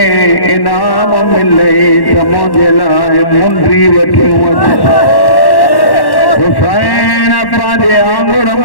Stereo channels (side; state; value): right; late; 1.1 ms